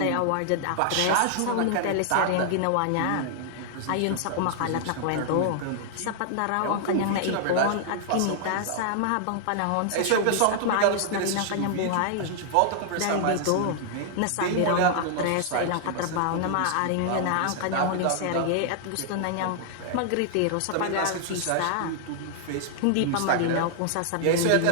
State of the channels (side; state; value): both; different; correlation 0.00